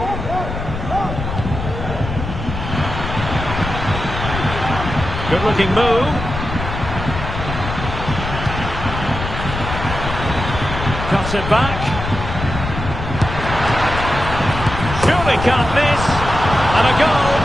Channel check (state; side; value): noise; left; rumble, 6 dB below the sound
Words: Good-looking move. Cuts it back. Surely can't miss. And a goal.